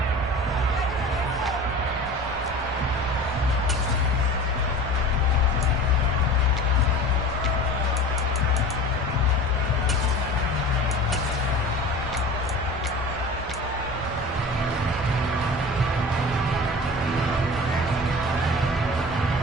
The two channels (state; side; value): normal; both; correlation 0.38